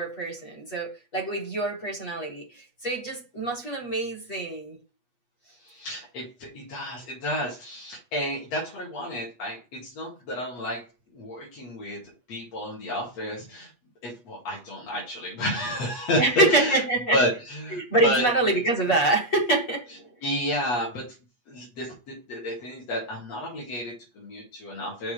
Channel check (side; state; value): right; late; 8.3 ms